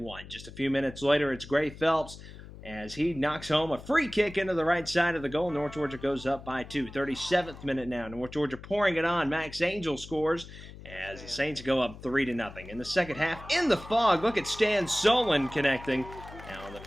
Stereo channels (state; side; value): noise; left; hum, 16 dB below the sound